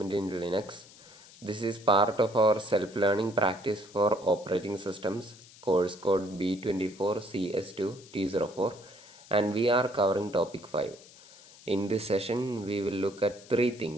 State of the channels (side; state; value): left; noise; hiss, 22 dB below the sound